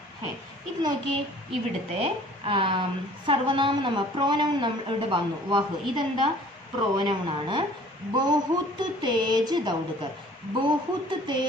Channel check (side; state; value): both; normal; correlation 0.51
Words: है. ഇത് നോക്കിയേ, ഇവിടുത്തെ സർവനാമം നമ്മൾ പ്രോനൗൺ ഇവിടെ വന്നു. വഹ് ഇതെന്താ പ്രോനൗൺ ആണ്. ബഹുത്ത് തേജ് ദൗഡ്കർ. ബഹുത്ത്